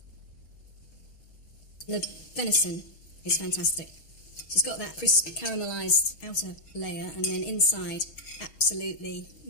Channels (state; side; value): late; right; 6.3 ms